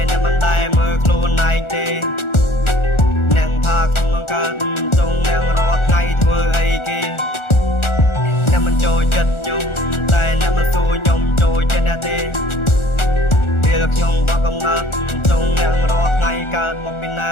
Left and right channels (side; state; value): right; late; 1.4 ms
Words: អ្នកមិនដែលមើលខ្លួនឯងទេអ្នកថាខ្ញុំកើតចង់អ្នករាល់ថ្ងៃធ្វើអីគេអ្នកមិនចូលចិត្តខ្ញុំតែអ្នកមិនសួរខ្ញុំចូលចិត្តអ្នកទេពេលខ្ញុំបកកំណត់ចង់អ្នករាល់ថ្ងៃកើតមកពីណា